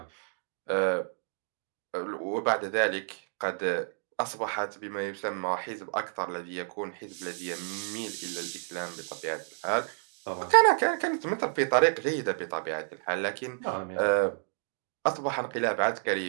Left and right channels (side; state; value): left; silent; digital silence